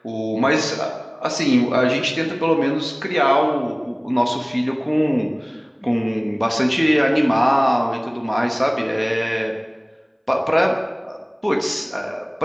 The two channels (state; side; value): identical; both; correlation 1.00